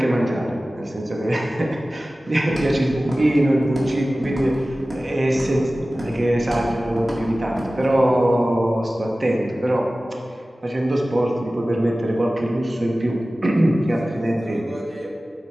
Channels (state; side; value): normal; both; correlation 0.96